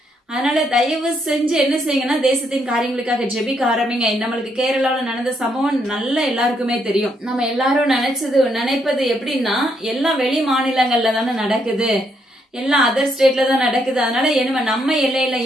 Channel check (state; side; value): normal; both; correlation 0.75